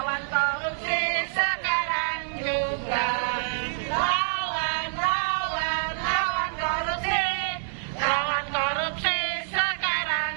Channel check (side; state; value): left; silent; digital silence